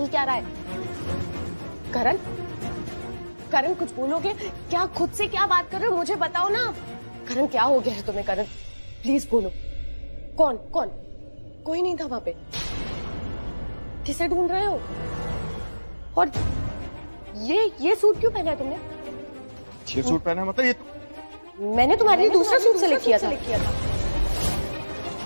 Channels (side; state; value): both; inverted; correlation -1.00